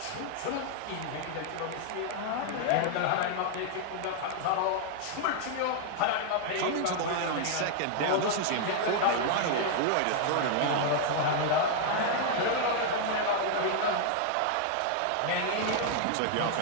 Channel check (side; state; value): both; different; correlation 0.00